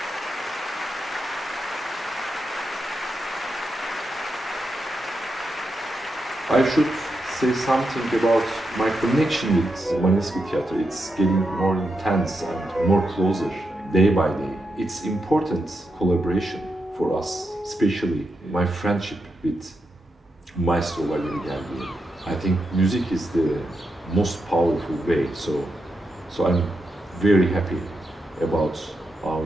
I should say something about my connection with Mariinsky Theatre. It's getting more intense and more closer day by day. It's important collaboration for us, especially my friendship with Maestro Valery. I think music is the most powerful way, so I'm very happy about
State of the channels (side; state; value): both; normal; correlation 0.85